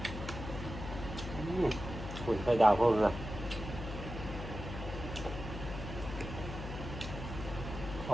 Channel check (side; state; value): left; noise; hum, 8 dB below the sound